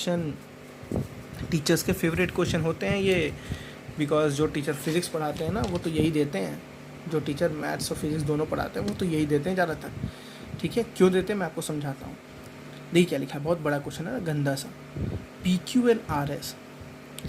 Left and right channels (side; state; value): both; identical; correlation 1.00